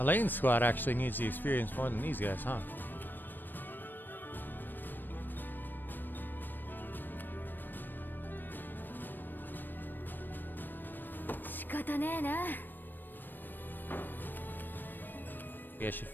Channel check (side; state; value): right; late; 0.092 ms